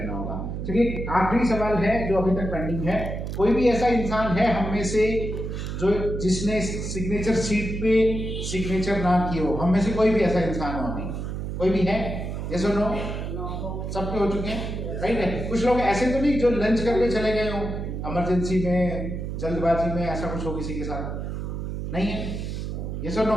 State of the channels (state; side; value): noise; right; hum, 5 dB below the sound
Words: होगा। चलिए आखिरी सवाल है जो अभी तक पेंडिंग है। कोई भी ऐसा इंसान है हम में से जो जिसने सिग्नेचर सीट पे सिग्नेचर ना किए हो? हम में से कोई भी ऐसा इंसान हो? नहीं, कोई भी है? यस और नो? सबके हो चुके हैं, राइट है। कुछ लोग ऐसे तो नहीं जो लंच करके चले गए हो इमरजेंसी में, जल्दबाजी में, ऐसा कुछ हो किसी के साथ? नहीं है? यस और